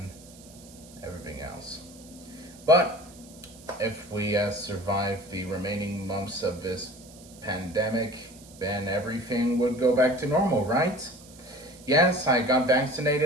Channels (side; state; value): right; noise; hiss, 22 dB below the sound